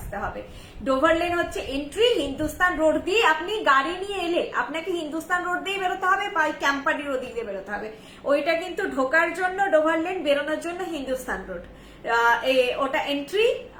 হবে। ডোভার লেন হচ্ছে এন্ট্রি, হিন্দুস্তান রোড দিয়ে আপনি গাড়ি নিয়ে এলে আপনাকে হিন্দুস্তান রোড দিয়ে বেরোতে হবে বা ক্যাম্পাডির ওদিক দিয়ে বেরোতে হবে। ওইটা কিন্তু ঢোকার জন্য ডোভার লেন, বেরোনোর জন্য হিন্দুস্তান রোড। ওটা এন্ট্রি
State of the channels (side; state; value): both; identical; correlation 1.00